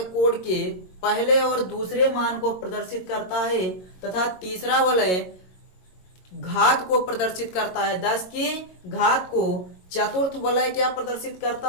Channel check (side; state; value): right; late; 22 ms